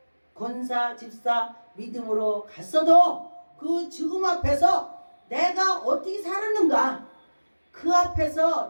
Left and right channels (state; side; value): inverted; both; correlation -1.00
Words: 권사 집사 믿음으로 갔어도 그 죽음 앞에서 내가 어떻게 살았는가 그